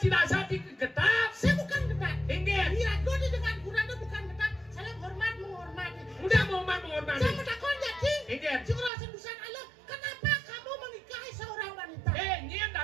sati getap Saya bukan ketat. tinggal Iya, gue dengan kurang itu bukan ketat. Saya menghormati. udah menghormati Saya menakon jadi. tinggal Si kerasan busan Allah, kenapa kamu menikahi seorang wanita? nyen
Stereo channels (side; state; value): left; drops out; at 8.9 s